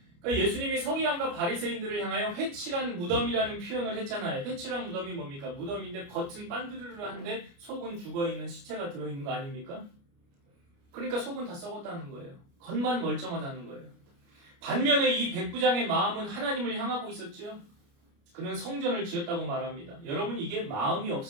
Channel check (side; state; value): left; late; 29 ms